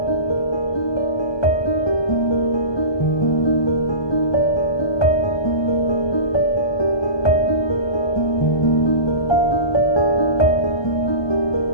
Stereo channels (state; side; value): late; right; 1.2 ms